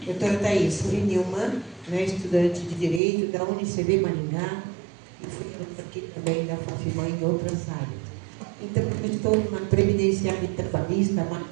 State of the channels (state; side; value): drops out; left; at 3.0 s